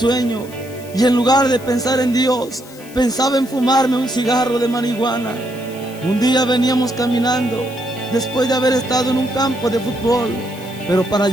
y en lugar de pensar en Dios, pensaba en fumarme un cigarro de marihuana. Un día veníamos caminando después de haber estado en un campo de fútbol, pero para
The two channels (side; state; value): left; noise; hiss, 20 dB below the sound